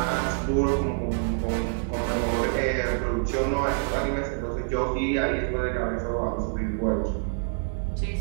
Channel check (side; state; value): left; silent; 61 dB below the other